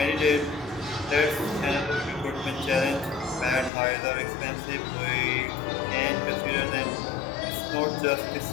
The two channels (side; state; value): right; drops out; at 3.7 s